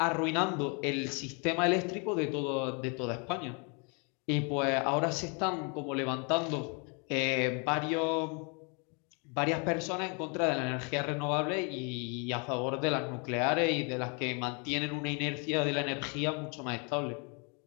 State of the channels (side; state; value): right; quieter; 34.8 dB